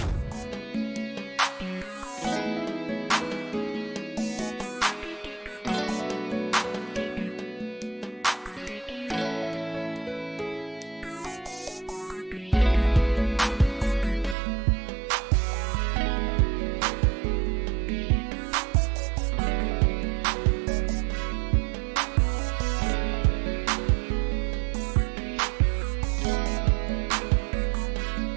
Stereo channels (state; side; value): drops out; left; at 14.4 s